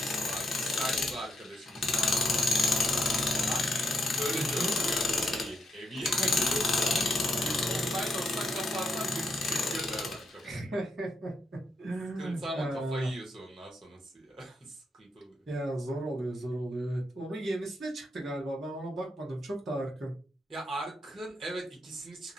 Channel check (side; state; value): both; normal; correlation 0.79